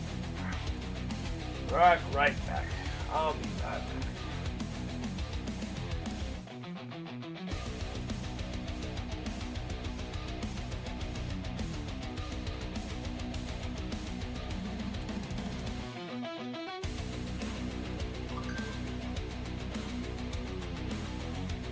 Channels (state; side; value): identical; both; correlation 1.00